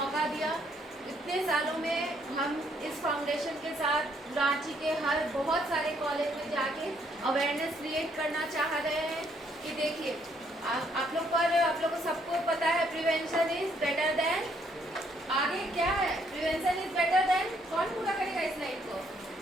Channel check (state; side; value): normal; both; correlation 0.69